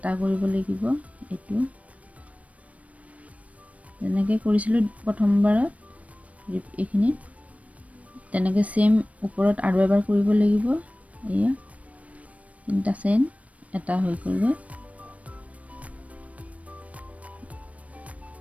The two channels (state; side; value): late; left; 0.066 ms